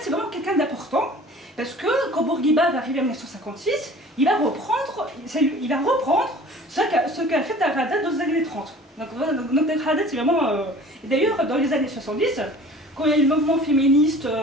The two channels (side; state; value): both; normal; correlation 0.45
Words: c'est vraiment quelqu'un d'important, parce que quand Bourguiba va arriver en 1956, il va reprendre ce qu'a fait Dar Haddad dans les années 30. Donc Dar Haddad, c'est vraiment... Et d'ailleurs, dans les années 70, quand il y a eu le mouvement féministe